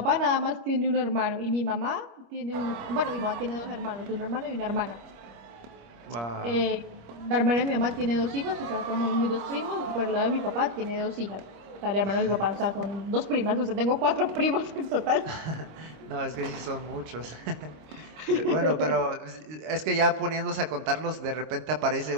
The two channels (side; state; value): left; late; 26 ms